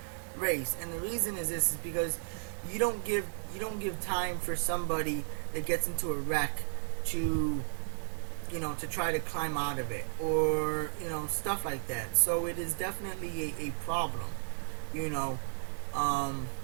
race. And the reason is this is because you don't give time for somebody that gets into a wreck to to try to climb out of it, or stuff like that. So it is definitely a problem.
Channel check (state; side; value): silent; left; digital silence